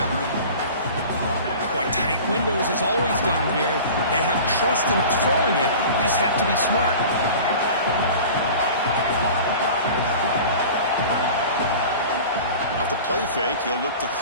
Boy, tight windows as always down here. They have trust in throwing it. You just have to be smart. Off the play fake, he'll look to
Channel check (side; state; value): both; inverted; correlation -0.39